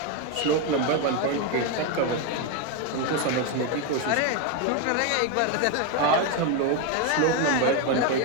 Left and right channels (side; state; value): both; different; correlation 0.02